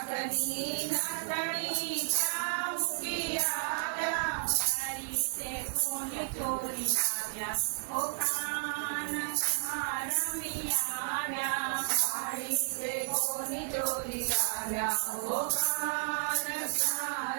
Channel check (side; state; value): left; silent; digital silence